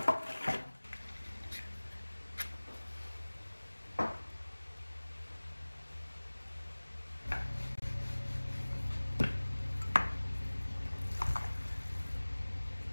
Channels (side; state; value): both; inverted; correlation -1.00